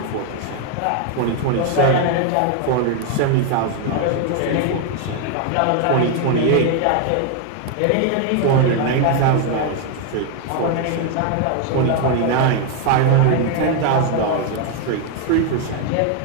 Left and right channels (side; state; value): both; different; correlation 0.01